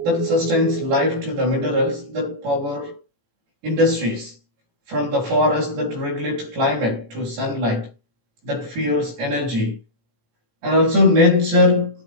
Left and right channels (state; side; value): late; left; 18 ms